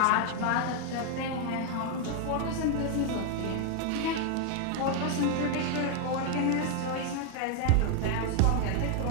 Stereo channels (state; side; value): different; both; correlation 0.00